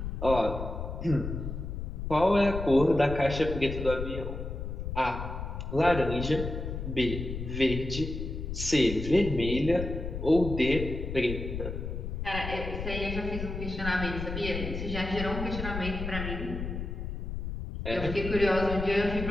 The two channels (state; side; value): noise; left; rumble, 5 dB below the sound